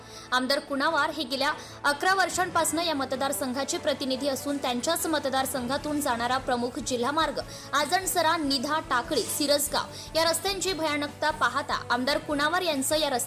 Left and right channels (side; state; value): both; identical; correlation 1.00